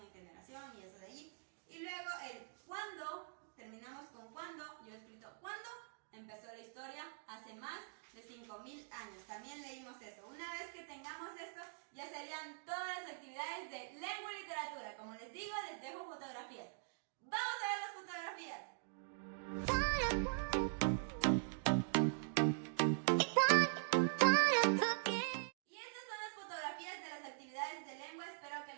generación y eso de allí. Y luego el cuándo, terminamos con cuándo. Yo he escrito cuándo empezó la historia, hace más de 5.000 años. También leímos eso. Una vez que tengamos esto, ya serían todas las actividades de lengua y literatura. Como les digo, les dejo fotografías. ¡Vamos a ver las fotografías! Y estas son las fotografías de las actividades de lengua. Espero que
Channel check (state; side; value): silent; left; digital silence